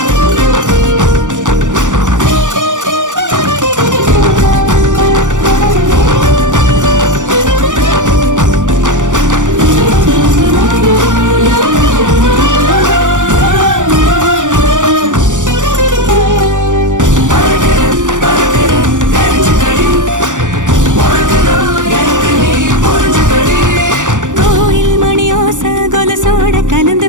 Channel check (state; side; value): late; left; 0.87 ms